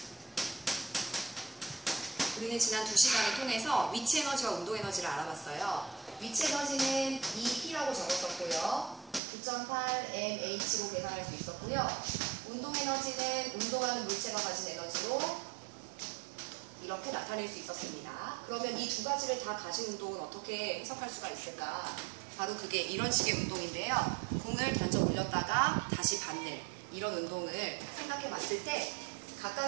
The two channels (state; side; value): drops out; left; at 9.2 s